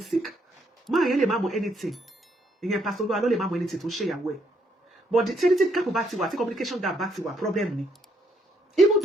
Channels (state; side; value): normal; both; correlation 0.72